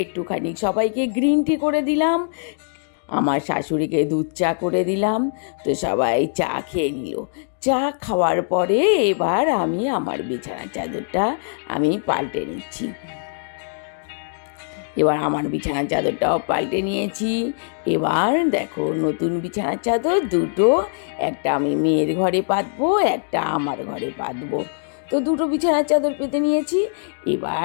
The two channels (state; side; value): silent; right; digital silence